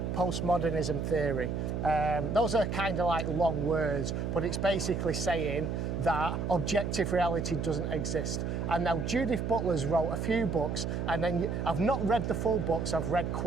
postmodernism theory. Those are kind of like long words, but it's basically saying that objective reality doesn't exist. And now Judith Butler's wrote a few books, and then I've not read the full books, I've read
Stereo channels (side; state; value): right; noise; hum, 2 dB below the sound